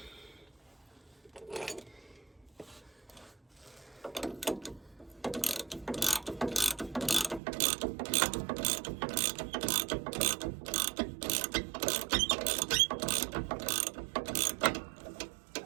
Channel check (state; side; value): drops out; left; at 7.4 s